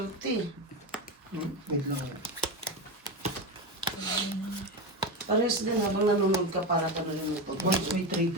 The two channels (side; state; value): both; normal; correlation 0.18